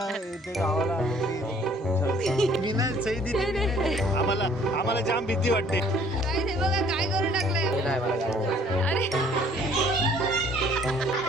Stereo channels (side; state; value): both; normal; correlation 0.57